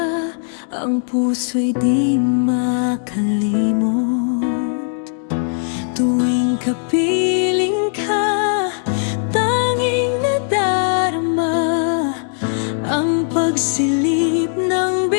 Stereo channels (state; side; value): silent; right; 63 dB below the other